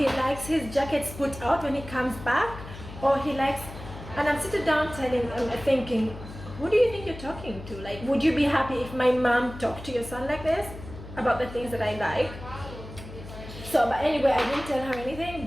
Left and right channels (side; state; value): left; noise; hum, 13 dB below the sound